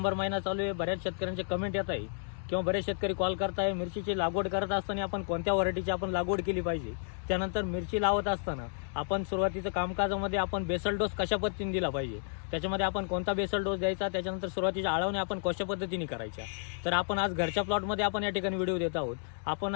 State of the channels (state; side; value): silent; right; digital silence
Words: महिना चालू आहे. बऱ्याच शेतकऱ्यांचे कमेंट येत आहे किंवा बरेच शेतकरी कॉल करताय मिरचीची लागवड करत असताना आपण कोणत्या व्हरायटीची आपण लागवड केली पाहिजे. त्यानंतर मिरची लावत असताना आपण सुरुवातीचं कामकाजामध्ये आपण बेसल डोस कशा पद्धतीने दिला पाहिजे, त्याच्यामध्ये आपण कोणता बेसल डोस द्यायचा, त्याच्यानंतर सुरुवातीच्या आळवण्या आपण कशा पद्धतीने करायच्या. तर आपण आज घरच्या प्लॉटमध्ये आपण या ठिकाणी व्हिडिओ देत आहोत. आपण